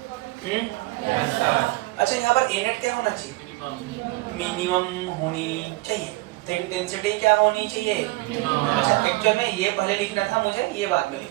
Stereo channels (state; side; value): quieter; left; 20.6 dB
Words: अच्छा यहाँ पर A नेट क्या होना चाहिए? मिनिमम होनी चाहिए। तो इंटेंसिटी क्या होनी चाहिए? अच्छा एक्चुअल में ये पहले लिखना था मुझे, ये बाद में